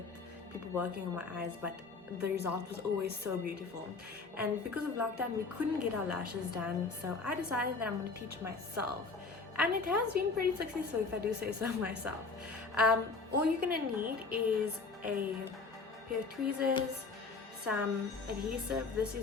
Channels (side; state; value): right; quieter; 4.2 dB